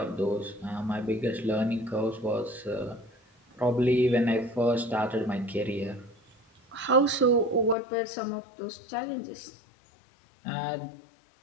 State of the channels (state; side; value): drops out; right; at 7.8 s